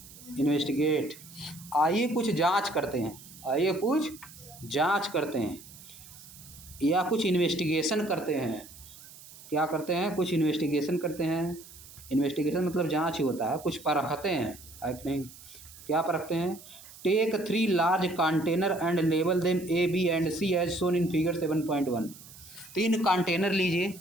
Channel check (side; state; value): right; noise; hiss, 19 dB below the sound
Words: इन्वेस्टिगेट, आइए कुछ जांच करते हैं, आइए कुछ जांच करते हैं या कुछ इन्वेस्टिगेशन करते हैं। क्या करते हैं? कुछ इन्वेस्टिगेशन करते हैं। इन्वेस्टिगेशन मतलब जांच ही होता है, कुछ परखते हैं, है कि नहीं? क्या परखते हैं? Take 3 large container and label them A B and C as shown in figure 7.1। 3 container लीजिए,